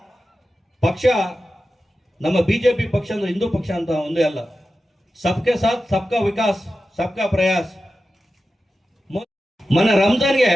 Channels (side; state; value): both; normal; correlation 0.93